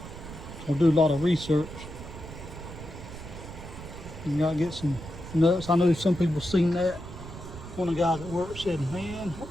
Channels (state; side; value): noise; right; rumble, 12 dB below the sound